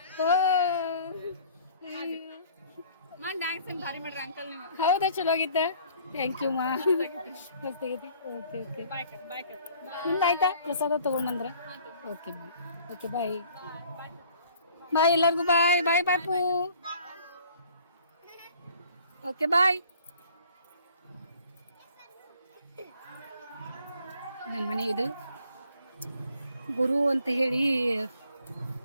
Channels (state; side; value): inverted; both; correlation -0.55